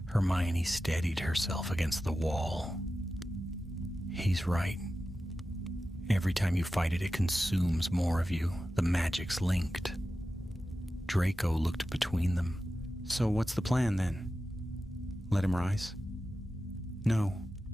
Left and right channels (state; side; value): normal; both; correlation 0.93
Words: Hermione steadied herself against the wall. "He's right. Every time you fight it, it consumes more of you. The magic's linked." Draco looked between them. "So what's the plan, then? Let him rise?" "No,"